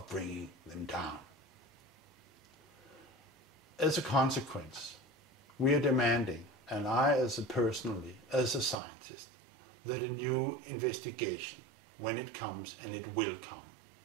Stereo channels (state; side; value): drops out; left; at 8.8 s